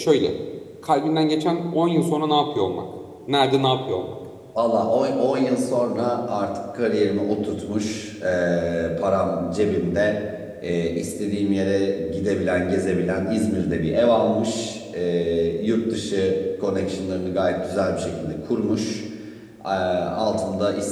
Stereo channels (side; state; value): both; identical; correlation 1.00